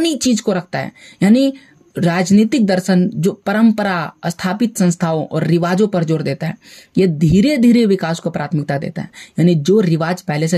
चीज को रखता है, यानी राजनीतिक दर्शन जो परंपरा, स्थापित संस्थाओं और रिवाजों पर जोर देता है। ये धीरे धीरे विकास को प्राथमिकता देता है, यानी जो रिवाज पहले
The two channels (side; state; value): both; identical; correlation 1.00